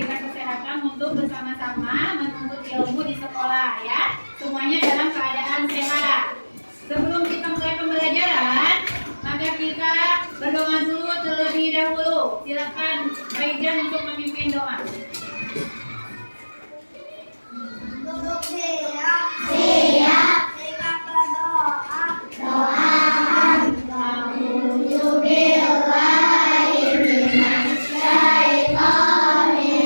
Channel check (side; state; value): both; inverted; correlation -1.00